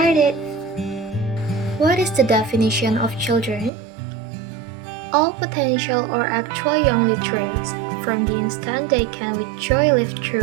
What is the definition of children? All potential or actual young literates, from the instant they can with joy live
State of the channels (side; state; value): left; drops out; at 3.7 s